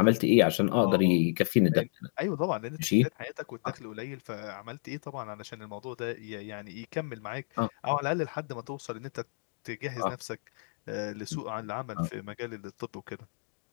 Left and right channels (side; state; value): right; silent; 57 dB below the other